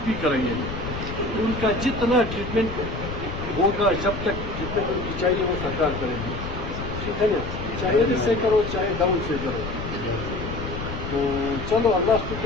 بھی کریں گے. ان کا جتنا ٹریٹمنٹ ہوگا جب تک جتنے ان کی چاہیے وہ سرکار کرے گی, ٹھیک ہے نا. چاہے ادھر سے کرو چاہے ڈاؤن سے کرو. تو چلو اللہ کو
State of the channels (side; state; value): left; noise; rumble, 7 dB below the sound